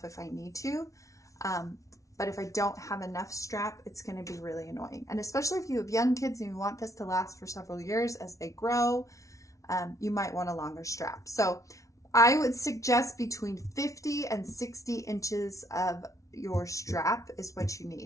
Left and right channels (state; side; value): late; right; 0.15 ms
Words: if I need to. But if I don't have enough strap, it's going to be really annoying. And especially if you have young kids and you want this to last for several years as they grow, you might want a longer strap. So I would suggest between 50 and 60 inches of your strap is what you